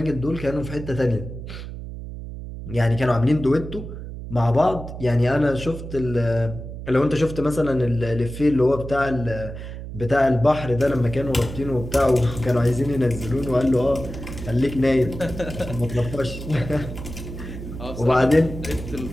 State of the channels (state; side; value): noise; right; hum, 10 dB below the sound